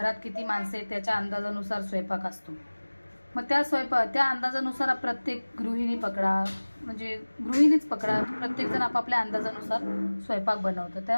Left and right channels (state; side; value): inverted; both; correlation -1.00